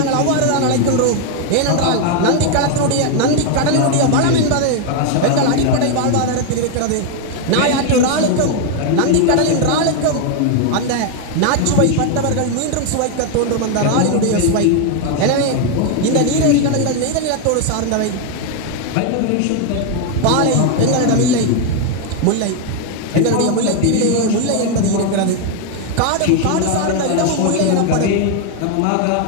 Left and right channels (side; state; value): both; different; correlation 0.01